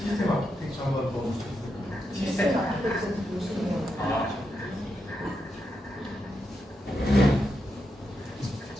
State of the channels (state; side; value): normal; both; correlation 0.84